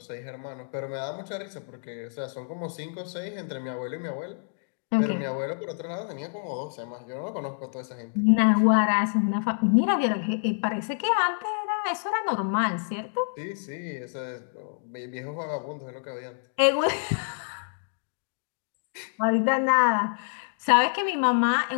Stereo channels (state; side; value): silent; right; digital silence